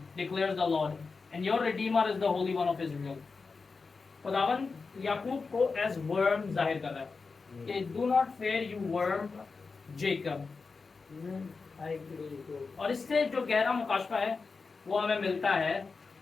declares the Lord and your Redeemer is the Holi one of Israel. खुदावन याकूब को एज वर्म जाहिर कर रहा है कि do not fair you worm Jacob. और इससे जो गहरा मुकाशफा है वो हमें मिलता है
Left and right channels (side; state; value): right; quieter; 4.5 dB